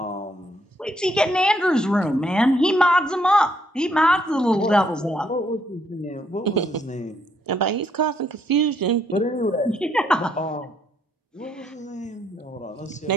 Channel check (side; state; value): both; normal; correlation 0.71